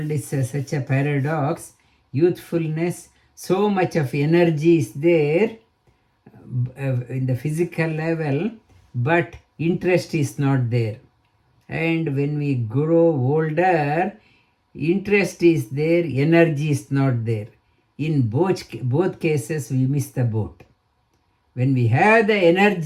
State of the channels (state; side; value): identical; both; correlation 1.00